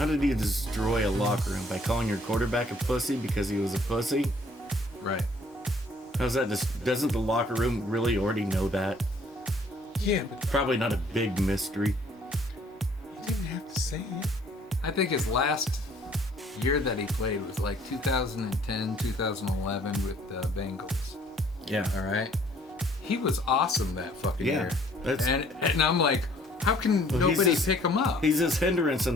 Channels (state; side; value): normal; both; correlation 0.60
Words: did he destroy a locker room? By calling your quarterback a pussy because he was a pussy? Right. How's that? Doesn't the locker room really already know that? Yeah, but Probably not a big mystery. you didn't have to say it. I think his last year that he played was like 2010, 2011 with the Bengals. Yeah. All right. He was awesome that fucking Yeah, year. that's- And I'm like, how can Well, he's nobody just- pick him up? He's this hindrance in